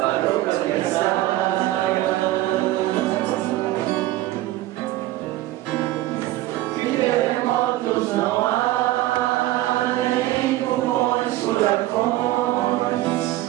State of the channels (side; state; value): left; quieter; 16.1 dB